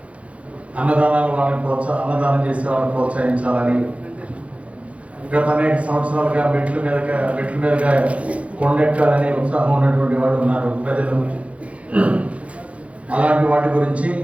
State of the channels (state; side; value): late; left; 0.064 ms